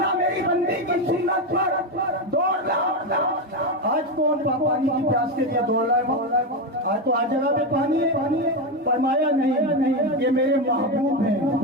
میری بندی کی سنت پر دوڑنا۔ آج کون پانی کی پیاس کے لیے دوڑ رہا ہے؟ آج تو ہر جگہ پہ پانی ہے۔ فرمایا نہیں، یہ میرے محبوب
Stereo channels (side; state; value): both; normal; correlation 0.12